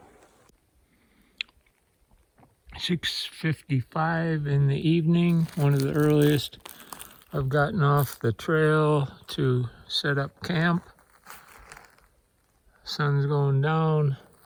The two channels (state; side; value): identical; both; correlation 1.00